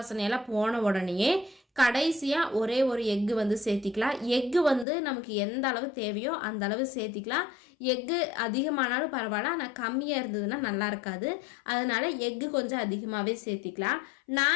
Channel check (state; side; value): drops out; right; at 4.9 s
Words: போன உடனேயே கடைசியாக ஒரே ஒரு எக்கு வந்து சேர்த்திக்கலாம். எக்கு வந்து நமக்கு எந்த அளவு தேவையோ அந்த அளவு சேர்த்திக்கலாம். எக்கு அதிகமானாலும் பரவாயில்ல, ஆனால் கம்மியாக இருந்ததுன்னா நல்லா இருக்காது. அதனால் எக்கு கொஞ்சம் அதிகமாகவே சேர்த்திக்கலாம்.